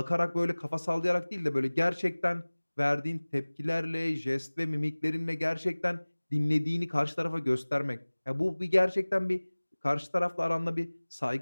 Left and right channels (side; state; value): both; inverted; correlation -1.00